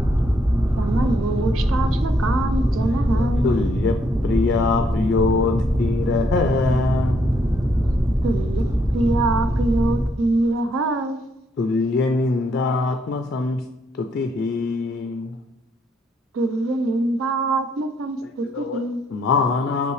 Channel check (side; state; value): both; normal; correlation 0.72